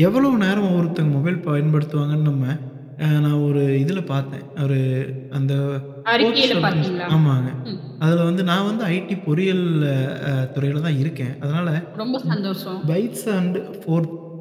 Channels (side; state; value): both; identical; correlation 1.00